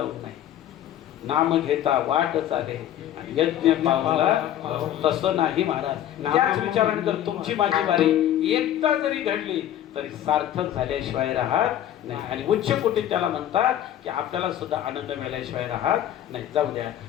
नाही, नाम घेता वाट चाले आणि यज्ञ पावला तसं नाही महाराज. त्याच विचाराने जर तुमची माझी वारी एकदा जरी घडली तरी सार्थक झाल्याशिवाय राहत नाही. आणि उच्च कोटीत त्याला म्हणतात की आपल्याला सुद्धा आनंद मिळाल्याशिवाय राहत नाही. जाऊ द्या.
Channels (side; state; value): right; quieter; 11.6 dB